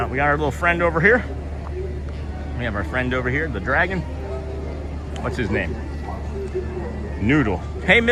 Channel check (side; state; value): both; identical; correlation 1.00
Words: little friend over here. We have our friend over here, the dragon. What's his name? Noodle. Hey,